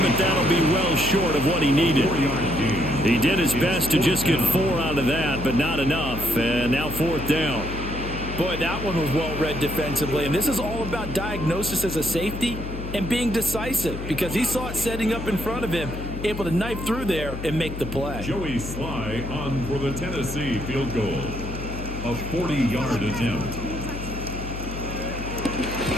but that'll be well short of what he needed. He did his best to just get 4 out of that, but not enough. And now 4th down. Boy, that one was well read defensively, and this is all about diagnosis as a safety and being decisive because he saw it setting up in front of him, able to knife through there and make the play. Joey Sly on for the Tennessee field goal. A 40-yard attempt.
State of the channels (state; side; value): noise; left; hum, 8 dB below the sound